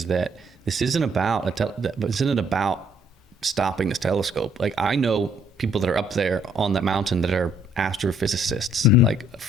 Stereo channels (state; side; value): normal; both; correlation 0.65